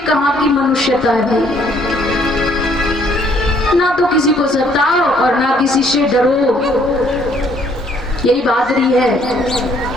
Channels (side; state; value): both; normal; correlation 0.64